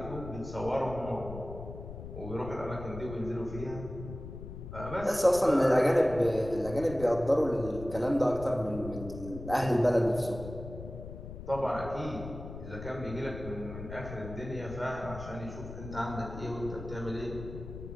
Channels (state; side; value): noise; left; rumble, 11 dB below the sound